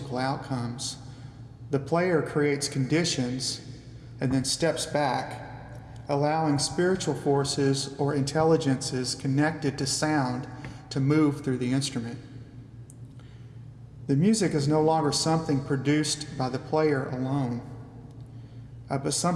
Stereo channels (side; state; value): both; identical; correlation 1.00